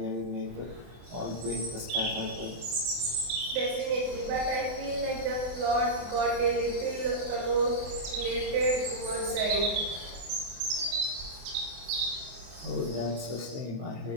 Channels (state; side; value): late; left; 24 ms